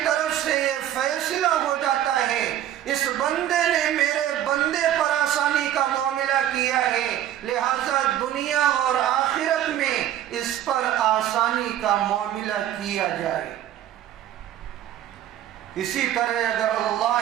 طرف سے یہ فیصلہ ہو جاتا ہے اس بندے نے میرے بندے پر آسانی کا معاملہ کیا ہے، لہذا دنیا اور آخرت میں اس پر آسانی کا معاملہ کیا جائے۔ اسی طرح اگر اللہ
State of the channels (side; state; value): left; quieter; 11.8 dB